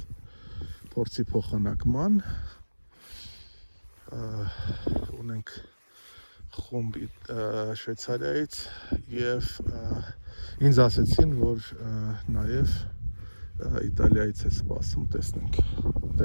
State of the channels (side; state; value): both; inverted; correlation -1.00